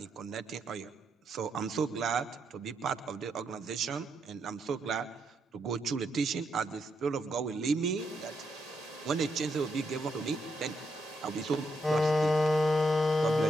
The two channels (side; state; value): both; normal; correlation 0.80